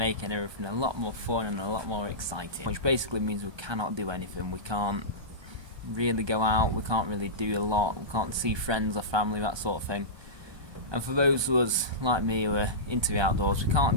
everything a lot more fun and a lot more exciting. Which basically means we cannot do anything. We can't really go out, we can't really do a lot, we can't see friends or family, that sort of thing. And for those of us like me who are into the outdoors, we can't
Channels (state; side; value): late; left; 1.2 ms